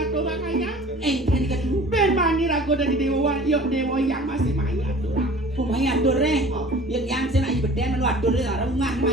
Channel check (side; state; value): both; normal; correlation 0.45